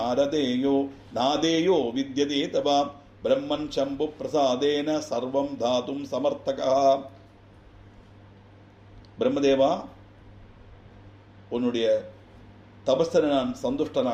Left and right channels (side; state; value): both; identical; correlation 1.00